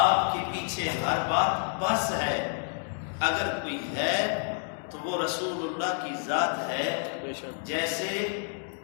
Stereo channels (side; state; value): right; silent; 58 dB below the other